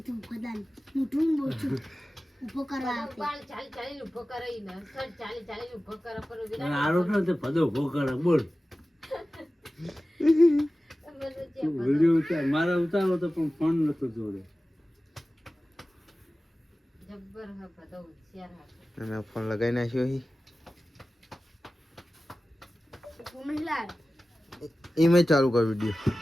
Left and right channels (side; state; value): both; normal; correlation 0.96